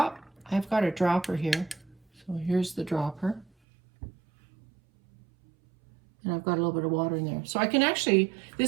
I've got a dropper here. So here's the dropper. And I've got a little bit of water in there. So I can actually,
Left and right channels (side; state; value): left; drops out; at 3.5 s